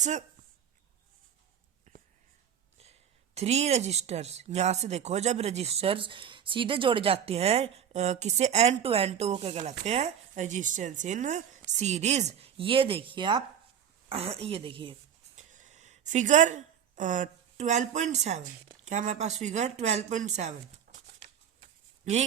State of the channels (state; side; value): quieter; left; 8.7 dB